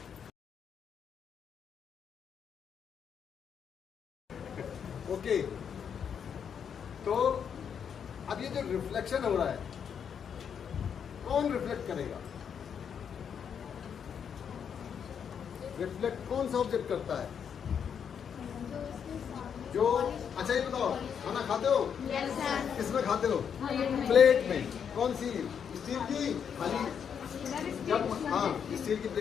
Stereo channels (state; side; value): quieter; right; 7.6 dB